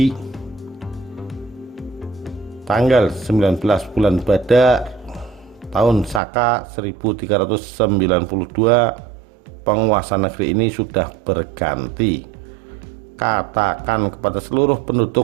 tanggal 19 bulan Badak tahun Saka 1392, penguasa negeri ini sudah berganti. Katakan kepada seluruh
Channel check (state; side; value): drops out; left; at 6.2 s